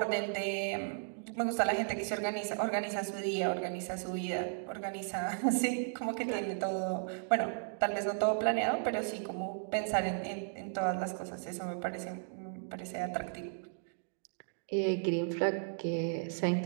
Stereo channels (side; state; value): left; silent; digital silence